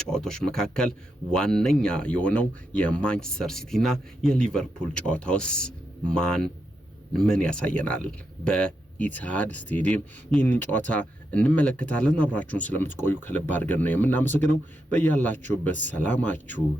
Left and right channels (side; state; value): both; normal; correlation 0.84